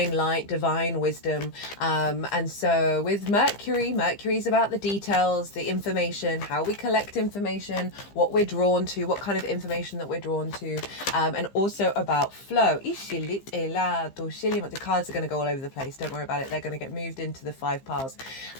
light, divine wisdom. And so with Mercury is about the details, the information, how we collect information, what we're drawn to, what kind of information that we're drawn to, and also about flow. The cards are going to go all over the place. Don't worry about it. They're going to get moved into the 5 piles.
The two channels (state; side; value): late; right; 15 ms